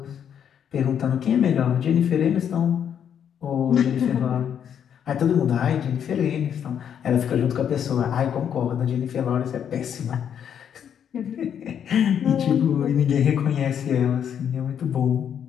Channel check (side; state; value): right; quieter; 8.6 dB